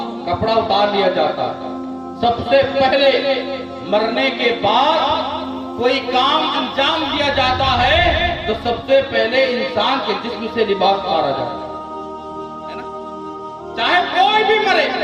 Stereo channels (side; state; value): both; identical; correlation 1.00